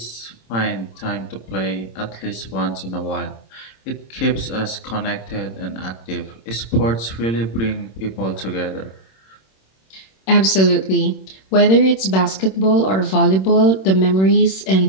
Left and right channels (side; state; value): right; late; 26 ms